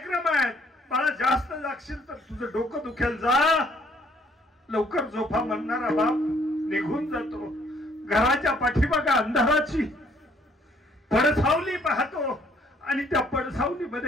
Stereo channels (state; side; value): normal; both; correlation 0.63